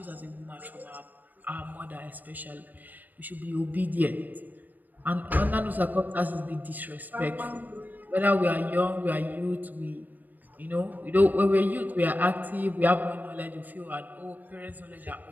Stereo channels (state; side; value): late; left; 0.085 ms